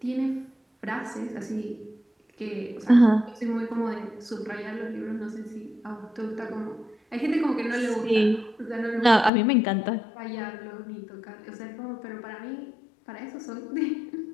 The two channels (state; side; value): drops out; right; at 9.3 s